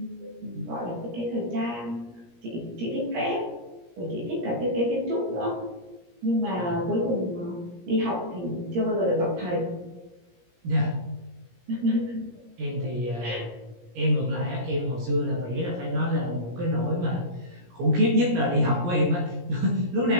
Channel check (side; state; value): left; late; 17 ms